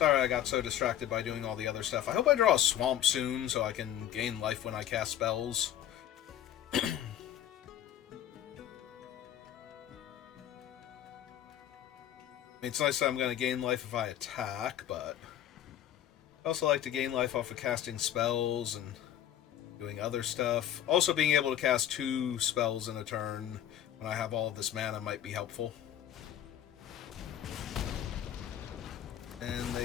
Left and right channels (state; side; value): quieter; right; 11.1 dB